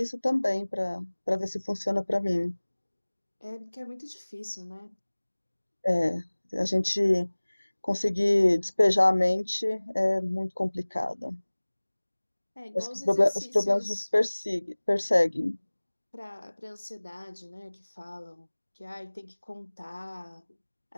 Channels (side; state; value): both; inverted; correlation -1.00